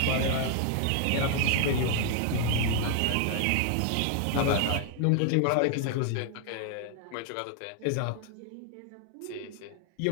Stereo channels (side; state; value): both; different; correlation 0.00